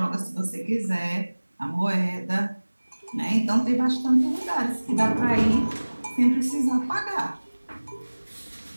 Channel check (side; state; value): both; inverted; correlation -1.00